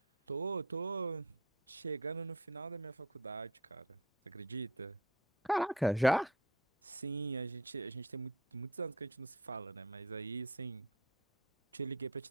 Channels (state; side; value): normal; both; correlation 0.37